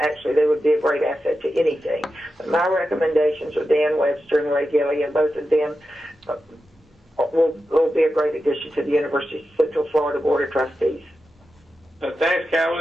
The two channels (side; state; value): both; normal; correlation 0.90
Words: Actually, they would be a great asset to anything. But my recommendations are Dan Webster and Ray Gilly, and both of them will be a great addition to the University of Central Florida Board of Trustees. Thanks,